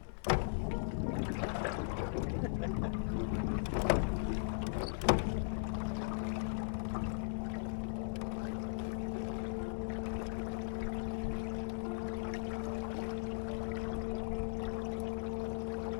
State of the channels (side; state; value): right; silent; 52 dB below the other